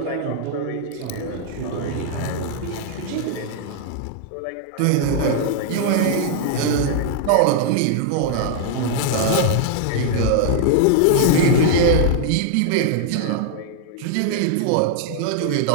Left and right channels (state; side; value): different; both; correlation -0.01